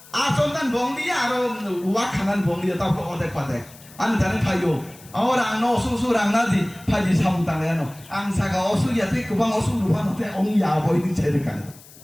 asonan bom lia atau wakanan bom lia tahu ke odek padek anu dari payo orang no susu orang nasi paji samutang ya no angsa kau osu ya tu kubang osu lupa nanti ong ya boy ini cerikan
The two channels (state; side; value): noise; left; hiss, 22 dB below the sound